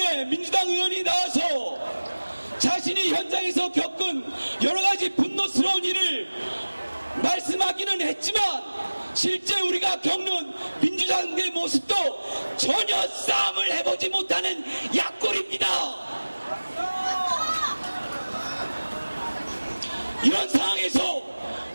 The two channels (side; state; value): both; inverted; correlation -1.00